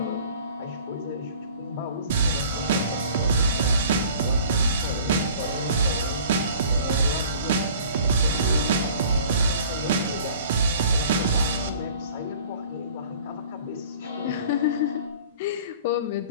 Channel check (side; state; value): both; inverted; correlation -0.48